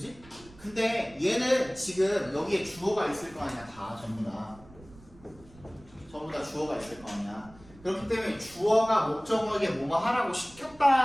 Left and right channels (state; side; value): noise; right; rumble, 23 dB below the sound